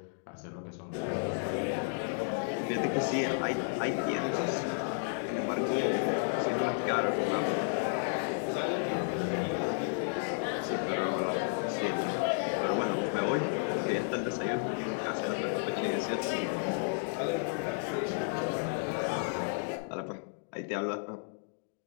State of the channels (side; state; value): right; silent; digital silence